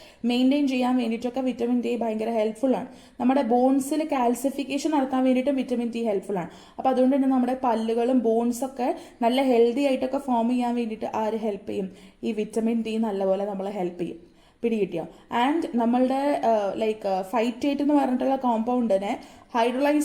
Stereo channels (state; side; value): identical; both; correlation 1.00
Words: മെയിൻറ്റെയിൻ ചെയ്യാൻ വേണ്ടിയിട്ടൊക്കെ വിറ്റമിൻ ഡി ഭയങ്കര ഹെൽപ്ഫുൾ ആണ്. നമ്മുടെ ബോൺസിൽ കാൽസിഫിക്കേഷൻ നടത്താൻ വേണ്ടിയിട്ടും വിറ്റമിൻ ഡി ഹെൽപ്ഫുൾ ആണ്. അപ്പോൾ അതുകൊണ്ട് തന്നെ നമ്മുടെ പല്ലുകളും ബോൺസൊക്കെ നല്ല ഹെൽത്തി ആയിട്ടൊക്കെ ഫോം ചെയ്യാൻ വേണ്ടിയിട്ട് ആര് ഹെൽപ്പ് ചെയ്യും? ഈ വിറ്റമിൻ ഡി നല്ലപോലെ നമ്മളെ ഹെൽപ്പ് ചെയ്യും. പിടികിട്ടിയോ? ആൻഡ് നമ്മളുടെ ലൈക്ക് ഫൈറ്റേറ്റ് എന്ന് പറഞ്ഞിട്ടുള്ള കോമ്പൗണ്ടിനെ